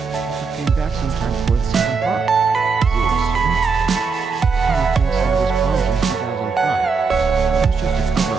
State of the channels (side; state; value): left; quieter; 4.9 dB